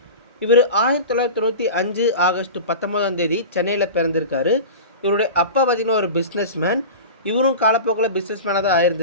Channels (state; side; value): inverted; both; correlation -0.31